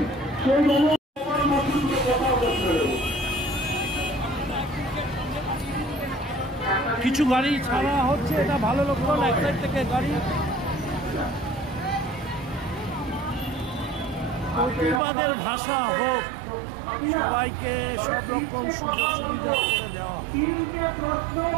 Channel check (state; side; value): drops out; left; at 15.0 s